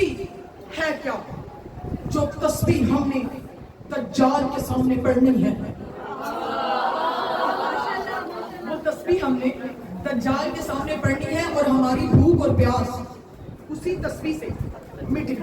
ہے کیا جو تسبیح ہم نے دجال کے سامنے پڑھنی ہے. وہ تسبیح ہم نے دجال کے سامنے پڑھنی ہے, اور ہماری بھوک اور پیاس اسی تسبیح سے مٹے.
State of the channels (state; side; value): identical; both; correlation 1.00